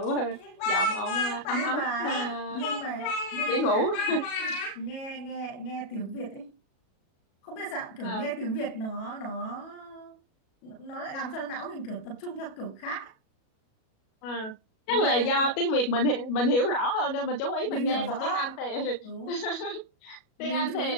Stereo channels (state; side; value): late; right; 37 ms